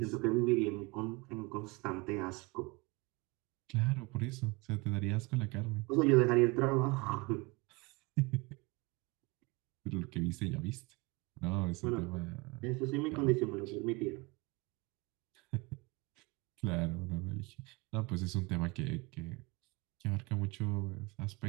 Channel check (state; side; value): quieter; left; 26.0 dB